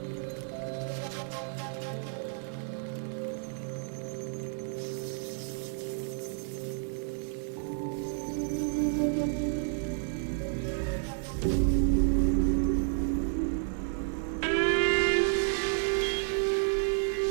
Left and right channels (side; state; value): left; silent; digital silence